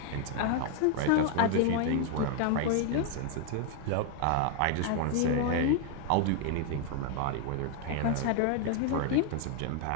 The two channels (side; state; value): both; different; correlation 0.00